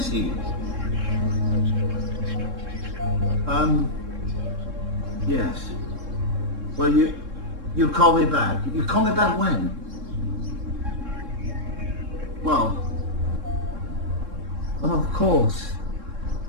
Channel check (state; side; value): late; left; 3.7 ms